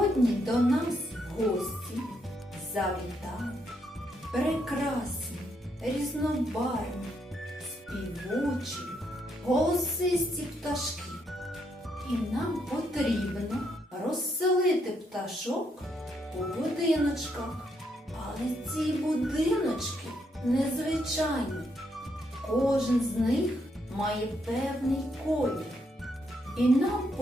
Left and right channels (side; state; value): both; normal; correlation 0.76